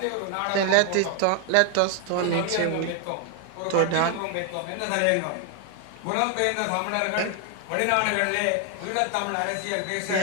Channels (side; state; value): both; different; correlation 0.00